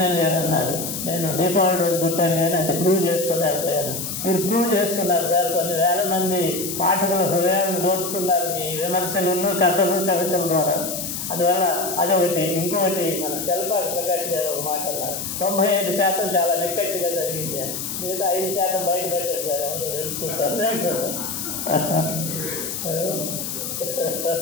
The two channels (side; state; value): left; noise; hiss, 5 dB below the sound